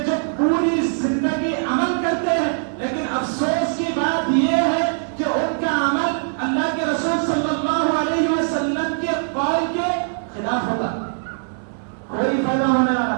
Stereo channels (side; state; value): left; silent; digital silence